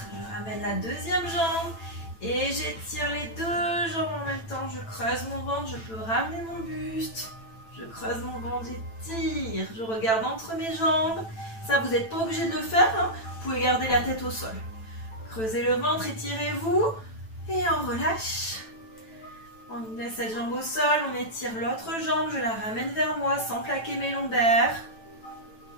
Je ramène la deuxième jambe. Et j'étire les deux jambes en même temps. Je creuse mon ventre. Je peux ramener mon buste. Je creuse mon ventre. J'étire. Je regarde entre mes jambes. Ça, vous n'êtes pas obligé de le faire. Hein. Vous pouvez garder la tête au sol. Creusez le ventre. Étirez-vous. Et on relâche. On met cette jambe au sol. On étire l'autre jambe. Je la ramène vers moi sans plaquer mes lombaires.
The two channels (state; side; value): late; right; 9.0 ms